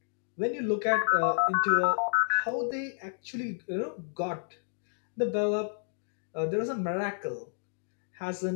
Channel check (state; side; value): silent; right; digital silence